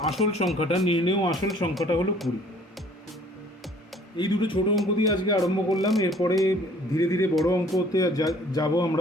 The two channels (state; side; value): normal; both; correlation 0.55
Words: আসল সংখ্যাটা নির্ণেয় আসল সংখ্যাটা হলো 20। এই দুটো ছোট অঙ্ক দিয়ে আজকে আরম্ভ করলাম, এরপরে ধীরে ধীরে বড় অঙ্কতে যাব